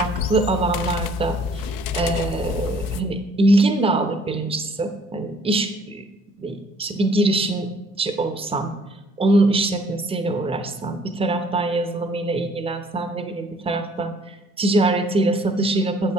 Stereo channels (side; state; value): both; normal; correlation 0.59